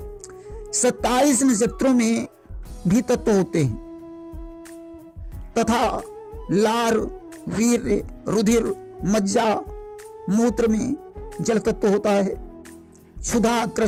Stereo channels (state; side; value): identical; both; correlation 1.00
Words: 27 नक्षत्रों में भी तत्व होते हैं तथा लार, वीर्य, रुधिर, मज्जा, मूत्र में जल तत्व होता है। क्षुधा,